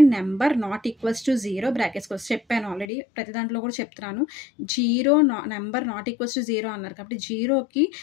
number =0 brackets చెప్పాను ఆల్రెడీ, ప్రతి దాంట్లో కూడా చెప్తున్నాను. నెంబర్ =0 అన్నారు కాబట్టి జీరోకి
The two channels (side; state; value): right; drops out; at 2.9 s